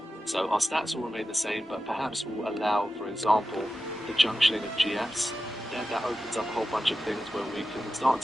So our stats will remain the same, but perhaps we'll allow, for example, the junctioning of GFs. Then that opens up a whole bunch of things where we can start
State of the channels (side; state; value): both; normal; correlation 0.92